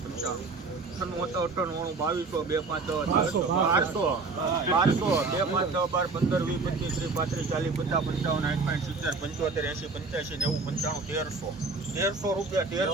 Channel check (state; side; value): quieter; left; 4.0 dB